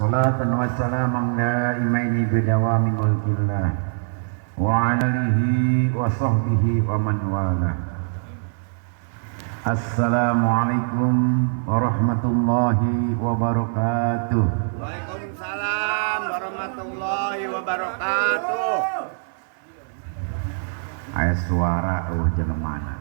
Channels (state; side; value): silent; left; 58 dB below the other